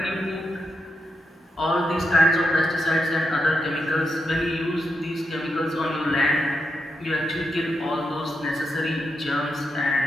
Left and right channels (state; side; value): normal; both; correlation 0.84